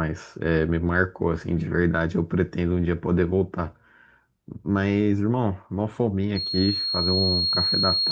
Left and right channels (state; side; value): identical; both; correlation 1.00